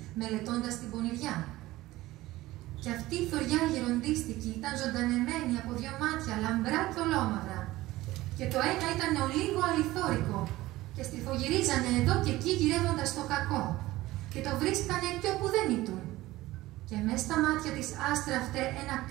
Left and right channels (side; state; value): left; quieter; 17.6 dB